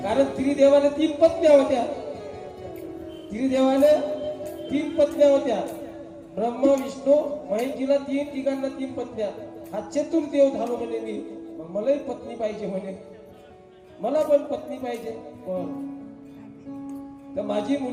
कारण त्रिदेवाला 3 पत्न्या होत्या. त्रिदेवाला 3 पत्न्या होत्या. ब्रह्मा विष्णू महेशजीला तिघांना 3 पत्न्या. हा चतुर्देव झालो म्हणे मी. मग मलाही पत्नी पाहिजे म्हणे, मला पण पत्नी पाहिजे. तर माझी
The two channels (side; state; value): both; identical; correlation 1.00